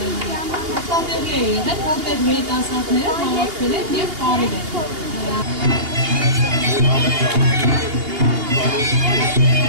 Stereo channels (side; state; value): left; late; 2.8 ms